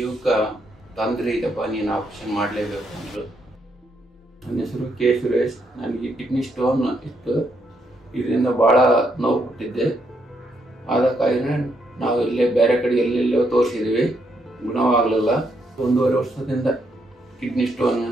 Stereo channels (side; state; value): both; normal; correlation 0.76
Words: ತೊಂದರೆ ಇದೆಪ್ಪ, ನೀನು ಆಪ್ರೇಷನ್ ಮಾಡಲೇಬೇಕು ಅಂದರು. ನನ್ನ ಹೆಸರು ಕೆ ಸುರೇಶ್. ನನಗೆ ಕಿಡ್ನಿ ಸ್ಟೋನ್ ಇತ್ತು. ಇದರಿಂದ ಭಾಳ ನೋವು ಕೊಟ್ಟಿದ್ದೆ. ಆದ ಕಾರಣ ನಾವು ಇಲ್ಲೇ ಬೇರೆ ಕಡೆ ಎಲ್ಲೆಲ್ಲೋ ತೋರಿಸಿದ್ವಿ, ಗುಣವಾಗಲಿಲ್ಲ. 1.5 ವರ್ಷದಿಂದ ಕಿಡ್ನಿ ಸ್ಟೋನ್